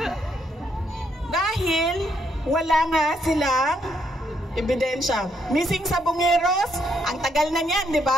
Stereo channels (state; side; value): normal; both; correlation 0.74